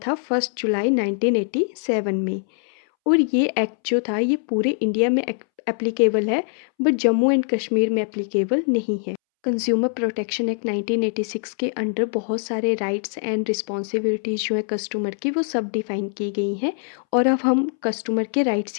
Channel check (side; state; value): right; silent; 64 dB below the other